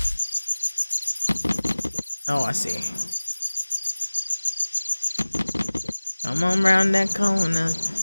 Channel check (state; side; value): inverted; both; correlation -1.00